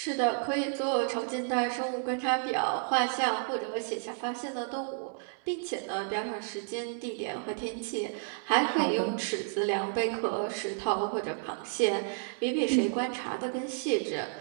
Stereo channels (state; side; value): silent; left; 57 dB below the other